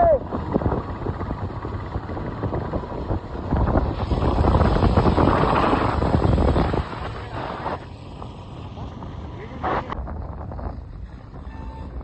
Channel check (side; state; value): both; identical; correlation 1.00